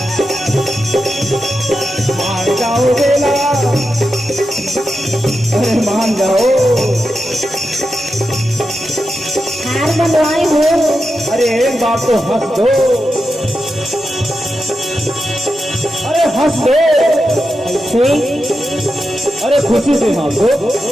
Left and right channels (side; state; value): both; normal; correlation 0.89